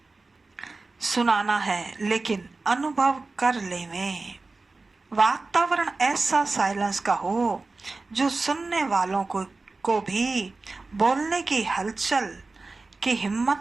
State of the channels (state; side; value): quieter; left; 3.6 dB